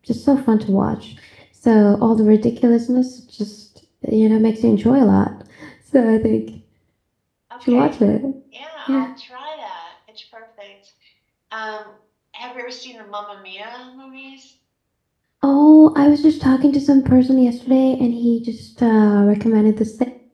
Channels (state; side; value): identical; both; correlation 1.00